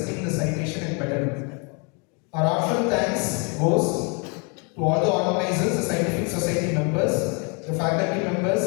the citation and medal. Our heartfelt thanks goes to all the organizers, the Scientific Society members, the faculty members,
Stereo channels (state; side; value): quieter; right; 34.1 dB